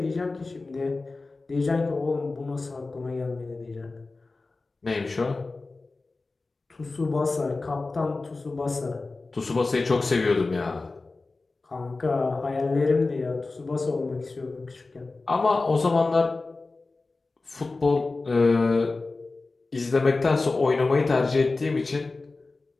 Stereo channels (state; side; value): quieter; right; 3.6 dB